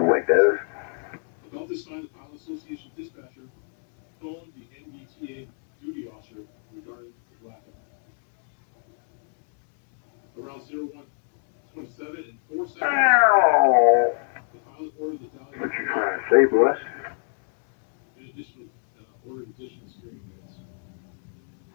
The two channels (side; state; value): right; silent; 56 dB below the other